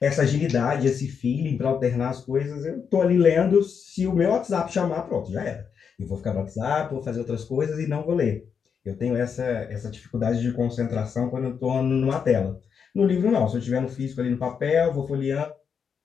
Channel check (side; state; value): right; quieter; 6.7 dB